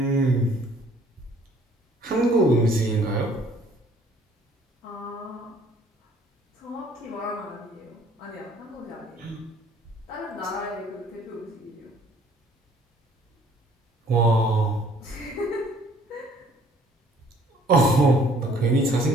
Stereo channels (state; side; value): normal; both; correlation 0.58